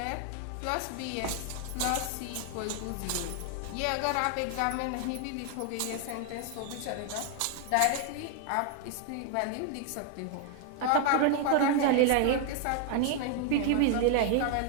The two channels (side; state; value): both; different; correlation 0.00